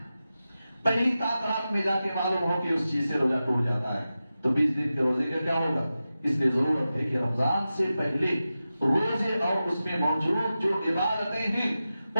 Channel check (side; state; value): both; inverted; correlation -0.93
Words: پہلی رات میں جا کے معلوم ہو کہ اس چیز سے روزہ ٹوٹ جاتا ہے تو 20 دن کے روزے کا کیا ہوگا؟ اس لیے ضرورت ہے کہ رمضان سے پہلے روزے اور اس میں موجود جو عبادتیں ہیں